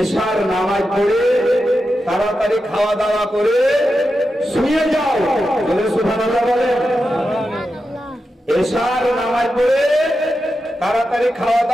নামাজ পড়ে তাড়াতাড়ি খাওয়া দাওয়া করে শুয়ে যাও। বলে সুবহানাল্লাহ বলে। এশার নামাজ পড়ে তাড়াতাড়ি খাওয়া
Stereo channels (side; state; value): both; normal; correlation 0.89